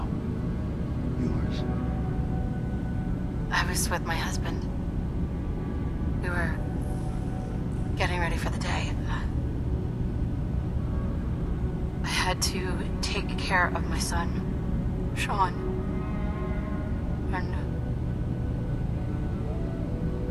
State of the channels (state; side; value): identical; both; correlation 1.00